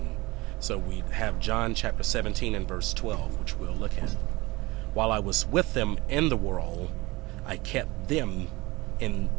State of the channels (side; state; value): left; quieter; 22.1 dB